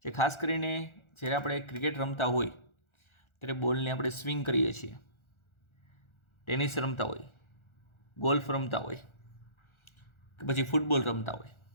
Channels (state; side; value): late; right; 1.4 ms